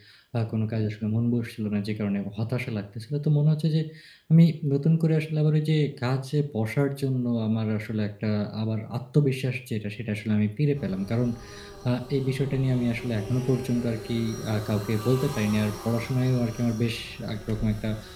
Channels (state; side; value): identical; both; correlation 1.00